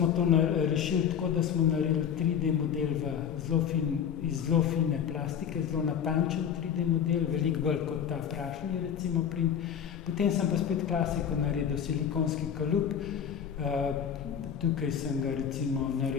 to rešili tako, da smo naredili 3D model iz zelo fine plastike, zelo natančen 3D model, veliko bolj kot ta prašni, recimo, print. Potem sem pa spet klasiko naredil, silikonski kalup. Tukaj sem ga recimo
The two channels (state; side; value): quieter; right; 8.3 dB